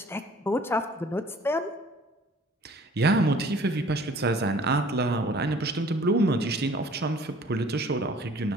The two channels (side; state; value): both; normal; correlation 0.52